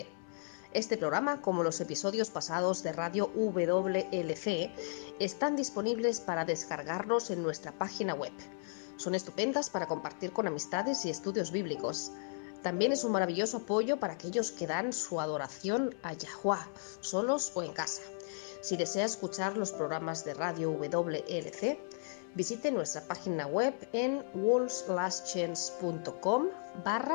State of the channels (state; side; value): silent; right; 54 dB below the other